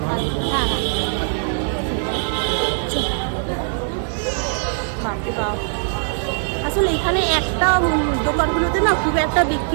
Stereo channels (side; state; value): left; silent; digital silence